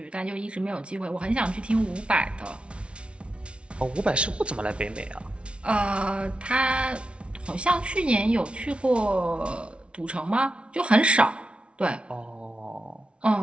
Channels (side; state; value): left; late; 0.059 ms